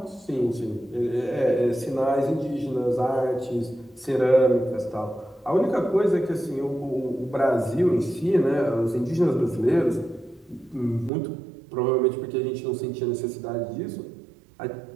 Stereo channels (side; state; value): left; drops out; at 11.1 s